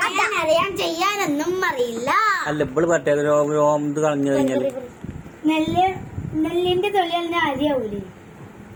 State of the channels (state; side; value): identical; both; correlation 1.00